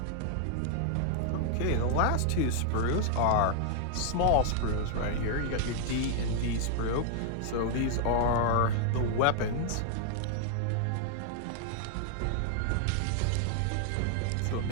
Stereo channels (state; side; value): different; both; correlation 0.00